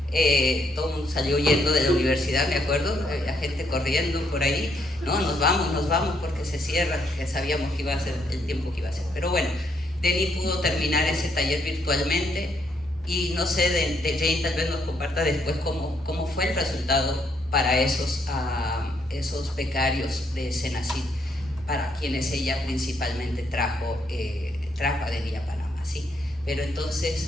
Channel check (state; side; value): normal; both; correlation 0.73